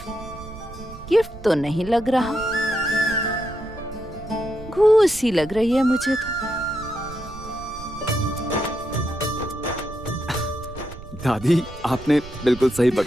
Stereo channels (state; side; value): noise; right; rumble, 14 dB below the sound